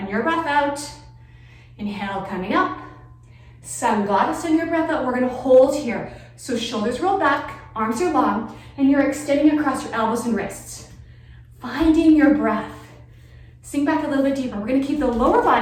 your breath out. Inhale, coming up. Sun goddess in your breath out. We're gonna hold here. So shoulders roll back, arms are long, and you're extending across your elbows and wrists. Finding your breath. Sink back a little bit deeper. We're gonna keep the lower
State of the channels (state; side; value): identical; both; correlation 1.00